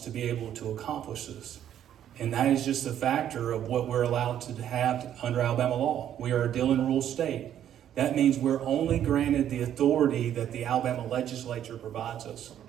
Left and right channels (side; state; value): left; quieter; 10.5 dB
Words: be able to accomplish this. And that is just a factor of what we're allowed to have under Alabama law. We are a deal and rule state. That means we're only granted the authority that the Alabama legislature provides us.